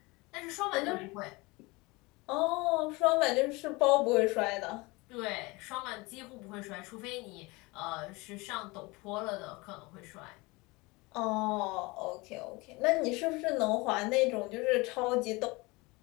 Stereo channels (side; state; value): right; quieter; 24.4 dB